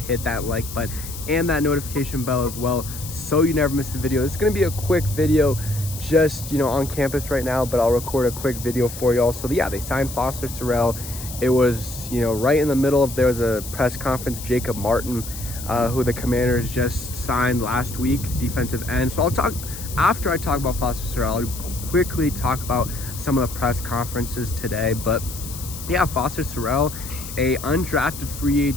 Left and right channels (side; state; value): left; noise; hiss, 11 dB below the sound